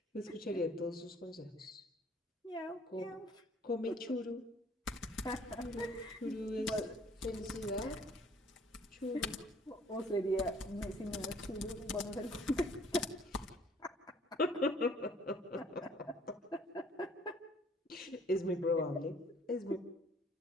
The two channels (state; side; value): normal; both; correlation 0.58